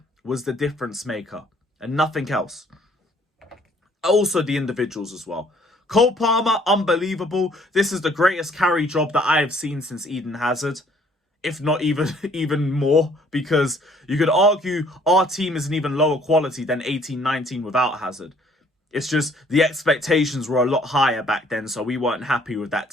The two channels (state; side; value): normal; both; correlation 0.61